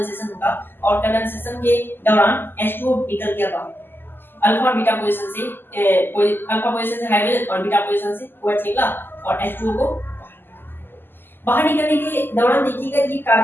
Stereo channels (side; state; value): right; late; 0.096 ms